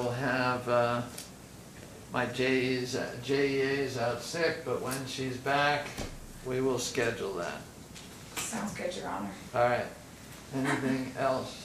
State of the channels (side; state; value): both; identical; correlation 1.00